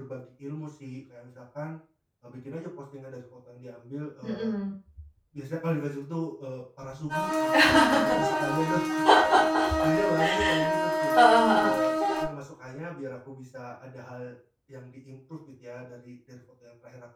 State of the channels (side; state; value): both; identical; correlation 1.00